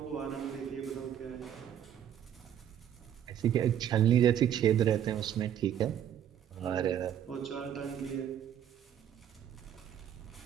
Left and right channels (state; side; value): quieter; left; 9.9 dB